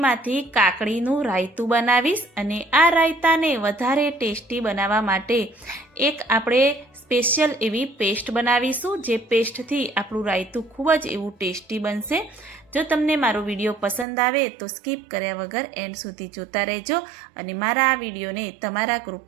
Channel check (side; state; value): left; drops out; at 14.1 s